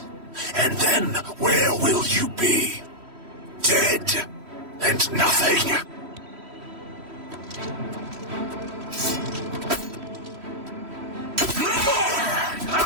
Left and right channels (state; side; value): late; left; 3.1 ms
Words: And then where will you be? Dead and nothing.